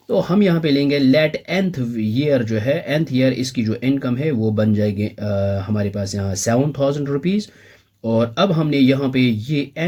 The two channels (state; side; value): identical; both; correlation 1.00